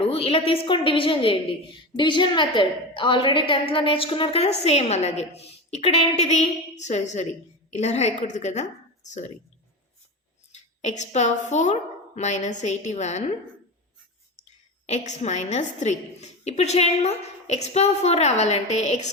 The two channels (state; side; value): normal; both; correlation 0.24